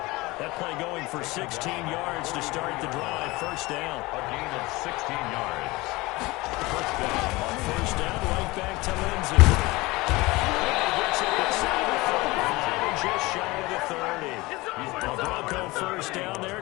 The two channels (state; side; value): quieter; right; 21.8 dB